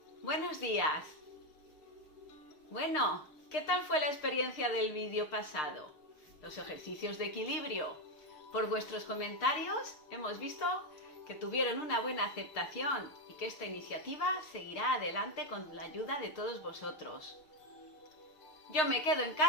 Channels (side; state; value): right; late; 6.5 ms